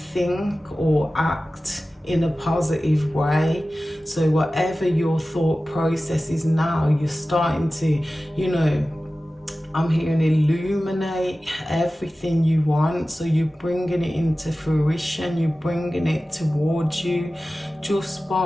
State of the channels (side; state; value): both; normal; correlation 0.96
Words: or act in a positive way. So whatever your thought process is now, you're starting to, you know, I'm hearing illuminate everything you want. So you're bringing it into fruition, you're bringing it towards you just